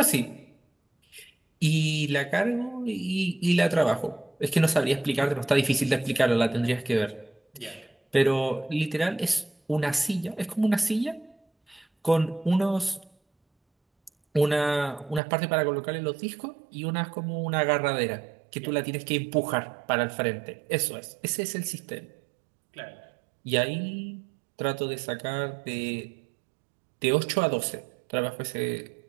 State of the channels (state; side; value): drops out; left; at 15.2 s